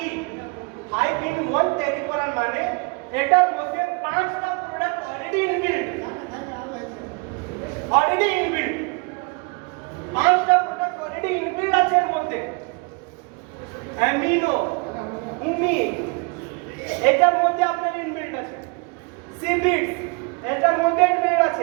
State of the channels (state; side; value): quieter; left; 30.6 dB